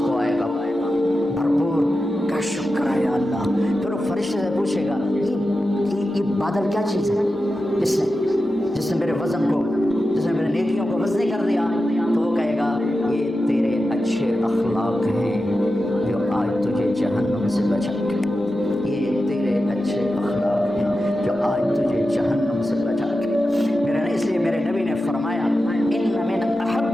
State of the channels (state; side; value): normal; both; correlation 0.92